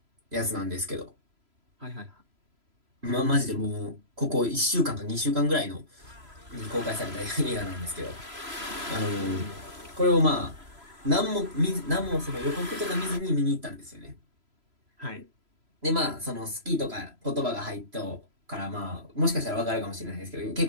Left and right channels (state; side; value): late; left; 3.0 ms